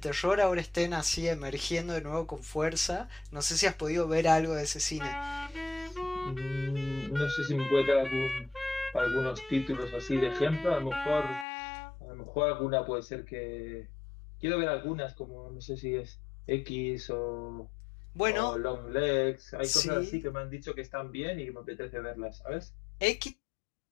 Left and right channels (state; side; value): drops out; right; at 11.5 s